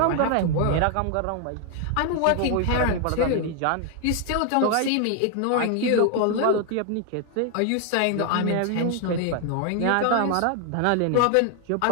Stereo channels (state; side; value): different; both; correlation 0.00